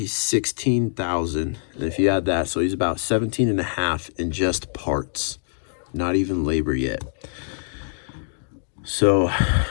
$16,000. And if you add that, so he's about 17.5 in just parts, not even labor yet. So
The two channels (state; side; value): silent; right; digital silence